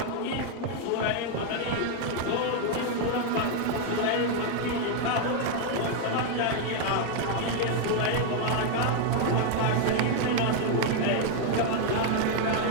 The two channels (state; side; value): different; both; correlation 0.01